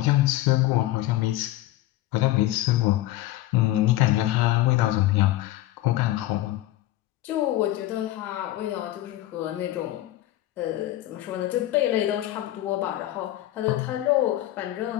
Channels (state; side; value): quieter; right; 15.4 dB